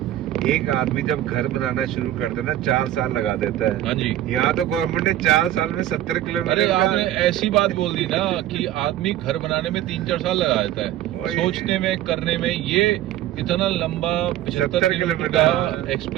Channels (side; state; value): left; quieter; 13.0 dB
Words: एक आदमी जब घर बनाना शुरू करता है ना 4 साल लगा देता है। हाँ जी। यहाँ तो गवर्नमेंट ने 4 साल में 70 किलोमीटर। अरे आपने ऐसी बात बोल दी ना कि आदमी घर बनाने में 3-4 साल लगा देता है, सोचने में, करने में। ये इतना लंबा 75 किलोमीटर का